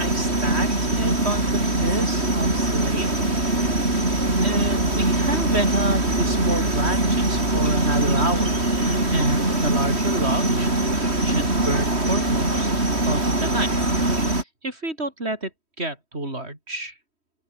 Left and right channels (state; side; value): late; left; 3.1 ms